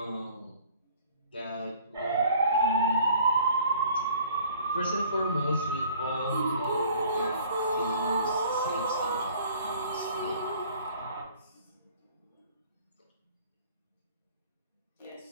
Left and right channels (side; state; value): both; inverted; correlation -0.53